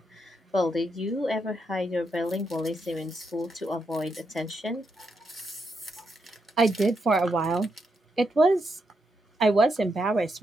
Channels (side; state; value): both; normal; correlation 0.81